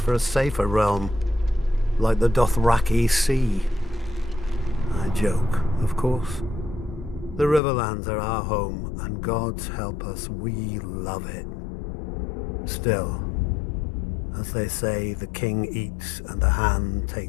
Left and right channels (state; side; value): drops out; right; at 7.6 s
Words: a safer realm, like the Dothraki Sea. I joke, of course. The Riverlands are our home, and God's help us, we love it. Still, as they say, the king eats and the hand